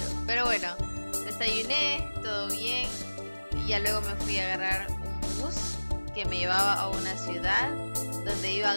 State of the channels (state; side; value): inverted; both; correlation -1.00